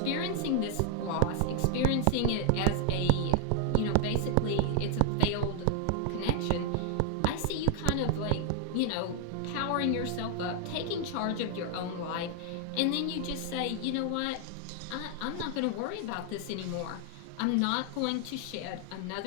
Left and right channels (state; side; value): different; both; correlation 0.00